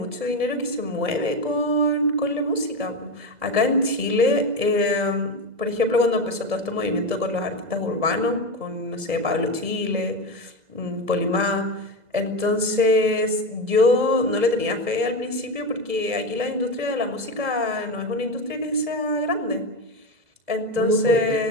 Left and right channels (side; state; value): left; late; 2.0 ms